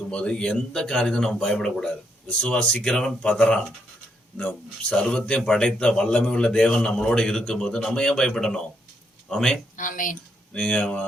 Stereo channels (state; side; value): normal; both; correlation 0.76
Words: எந்த காரியத்தையும் நம்ம பயப்படக்கூடாது. விசுவாசிக்கிறவன் பதறான். இந்த சர்வத்தையும் படைத்த வல்லமை உள்ள தேவன் நம்மளோட இருக்கும்போது நம்ம ஏன் பயப்படணும்? ஆமே. நீங்க